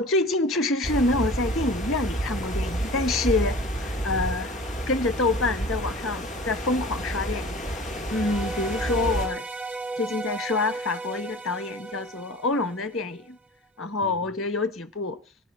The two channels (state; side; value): normal; both; correlation 0.39